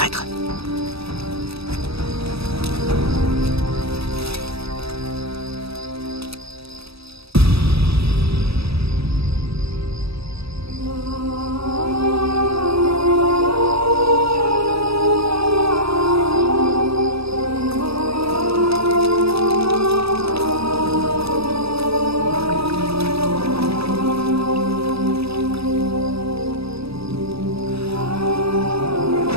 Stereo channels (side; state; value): left; late; 0.77 ms